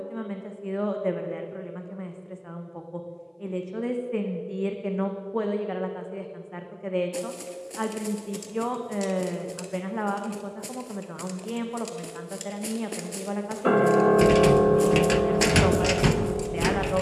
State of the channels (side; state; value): both; identical; correlation 1.00